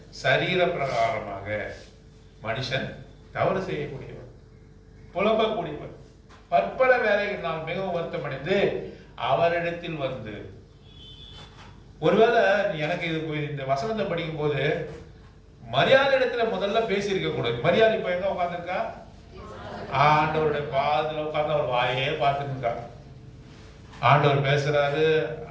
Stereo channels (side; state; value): both; identical; correlation 1.00